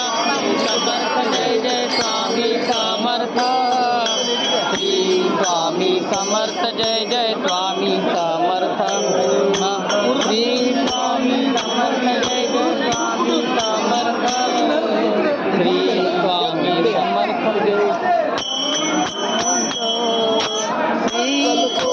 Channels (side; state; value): both; identical; correlation 1.00